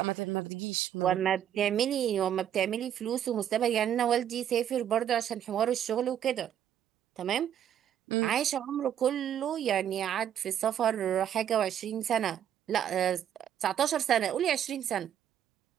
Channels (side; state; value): left; quieter; 10.0 dB